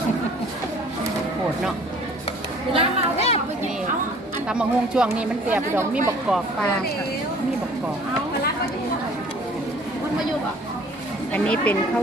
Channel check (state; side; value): normal; both; correlation 0.52